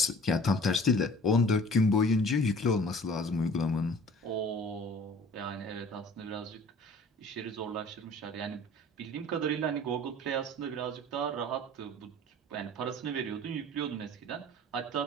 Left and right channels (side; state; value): both; normal; correlation 0.47